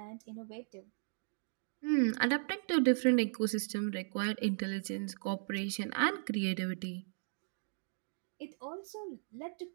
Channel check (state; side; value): silent; left; digital silence